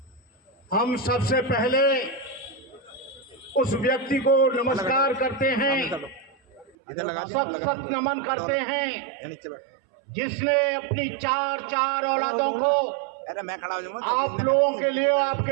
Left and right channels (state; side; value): drops out; left; at 6.8 s